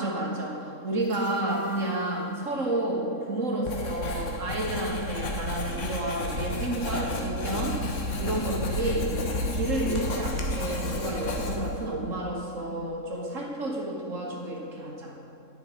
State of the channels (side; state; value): left; late; 3.6 ms